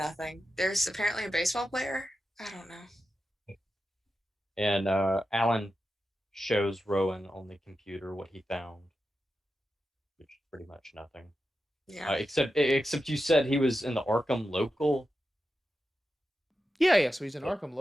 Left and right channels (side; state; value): both; normal; correlation 0.90